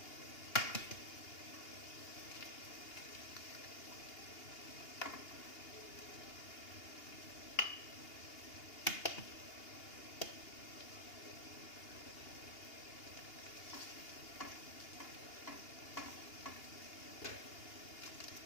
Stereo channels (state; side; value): late; right; 2.8 ms